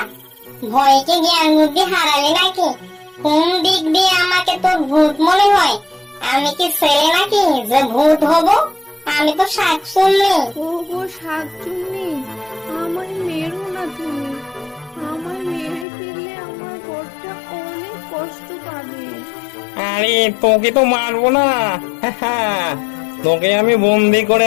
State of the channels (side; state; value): right; drops out; at 15.9 s